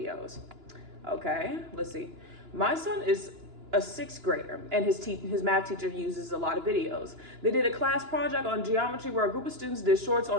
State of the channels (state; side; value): late; left; 2.9 ms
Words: Okay, let's see. My son is a sixth grader, and his math teacher uses a lot of videos. They did a class project on geometry where a group of students did shorts